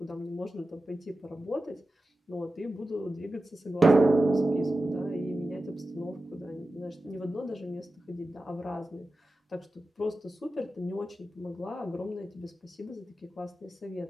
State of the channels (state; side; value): normal; both; correlation 0.93